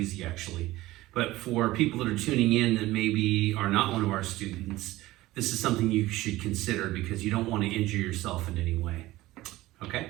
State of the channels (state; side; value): quieter; left; 17.5 dB